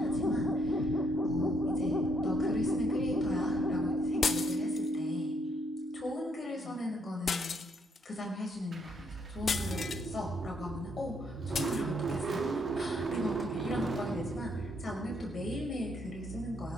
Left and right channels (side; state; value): both; normal; correlation 0.72